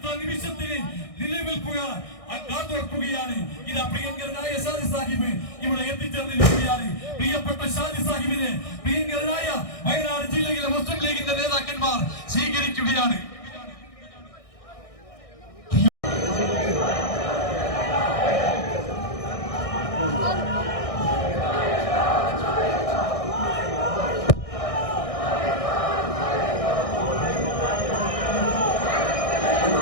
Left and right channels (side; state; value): right; late; 1.6 ms